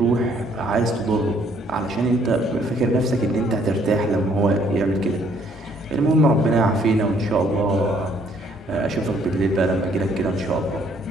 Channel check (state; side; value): normal; both; correlation 0.64